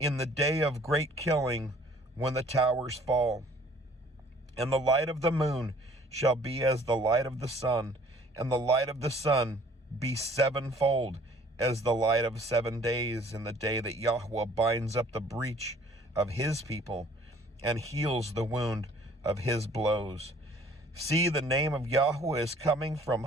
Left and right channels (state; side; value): normal; both; correlation 0.55